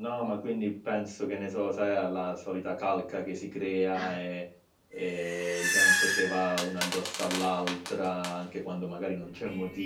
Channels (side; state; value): both; identical; correlation 1.00